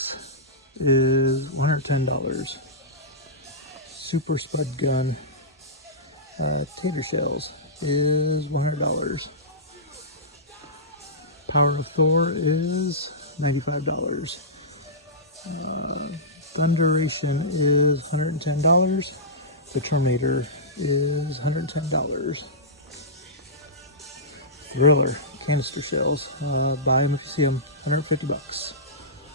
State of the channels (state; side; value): normal; both; correlation -0.16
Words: is $110. Super Spud Gun Tater Shells is $100. Power of Thor is $95. Thunderation is $110. The Terminator is $110. Thriller canister shells, buy them if you see them, $150.